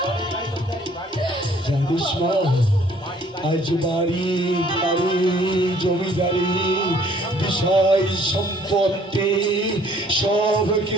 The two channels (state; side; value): normal; both; correlation 0.59